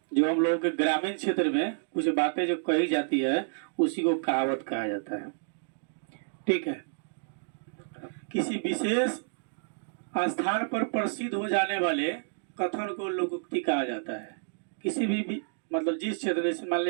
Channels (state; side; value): silent; left; digital silence